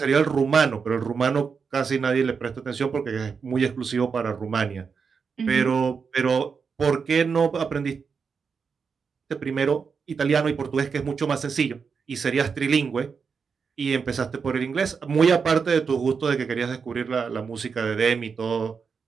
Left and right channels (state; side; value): quieter; left; 5.7 dB